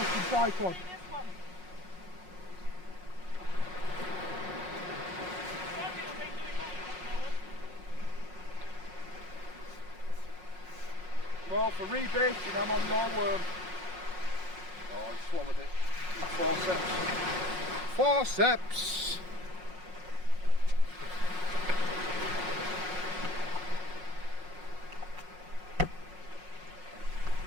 tripod. See this one. Gabriel ain't doing that at the moment. Well, for rebaiting, I'm on your worm. Oh, I swallowed it. Forceps. Forceps!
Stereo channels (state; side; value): late; left; 5.5 ms